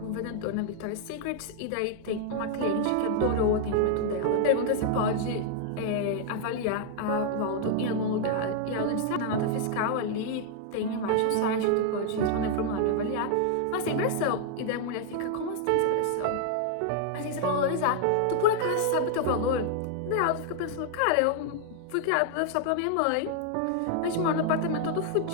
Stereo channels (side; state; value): both; different; correlation 0.00